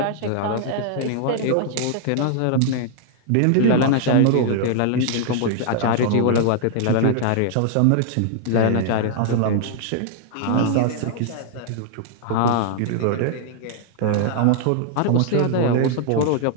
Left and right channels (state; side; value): different; both; correlation -0.01